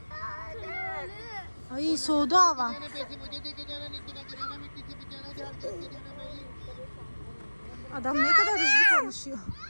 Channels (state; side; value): inverted; both; correlation -1.00